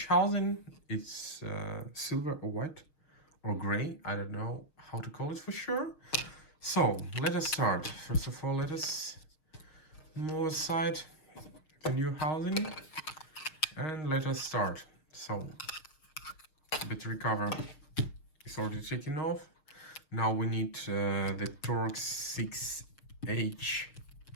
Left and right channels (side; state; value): right; late; 6.5 ms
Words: housing. It's silver or white or gray. I don't know how to call it for sure. So let us start. First of all, let us move aside the new housing and let us start. So battery cover is already taken off. Now we need the Torx 6H